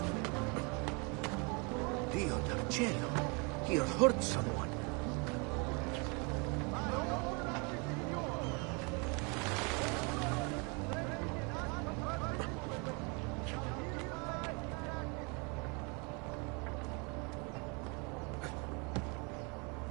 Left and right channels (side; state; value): left; quieter; 31.9 dB